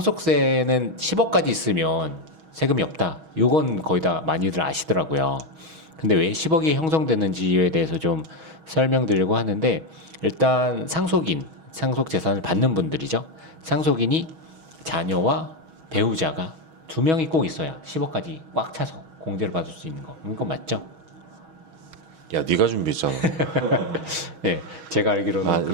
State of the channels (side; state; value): left; late; 6.3 ms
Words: 10억까지 있으면 세금이 없다. 요건 거의 다 많이들 아시더라고요. 근데 왜 10억이 형성되는지에 대해서 좀 설명드리려고 하는데 일단 상속 재산을 받는 분들이죠. 상속인이 자녀와 배우자가 두 명이 꼭 있어야 10억까지 꽉 차서 공제를 받을 수 있는 거. 이건 맞죠? 야 네가 준비했잖아. 네, 제가 알기로는